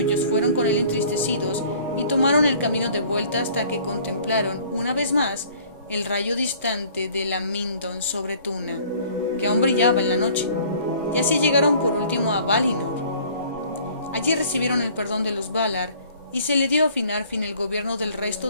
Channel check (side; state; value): both; inverted; correlation -0.53